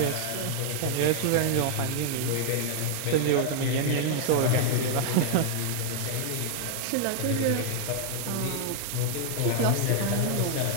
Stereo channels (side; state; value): both; different; correlation -0.01